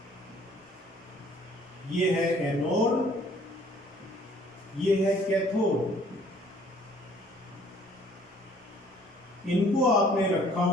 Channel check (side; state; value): both; normal; correlation 0.58